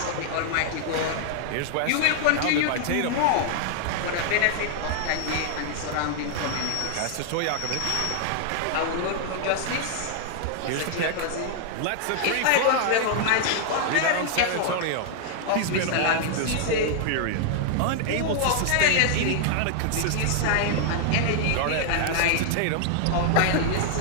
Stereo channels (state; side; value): different; both; correlation -0.01